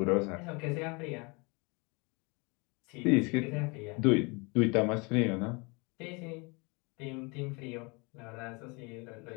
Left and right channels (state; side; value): quieter; right; 29.3 dB